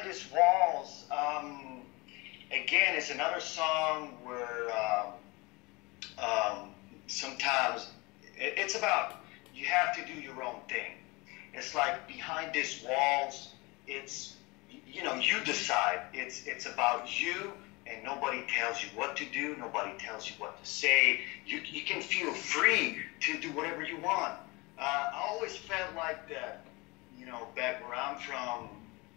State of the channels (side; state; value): right; quieter; 25.1 dB